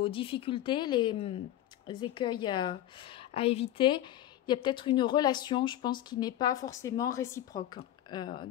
difficultés, les écueils à éviter. Il y a peut-être une relation, je pense, qui n'est pas forcément réciproque.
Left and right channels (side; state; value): right; quieter; 12.8 dB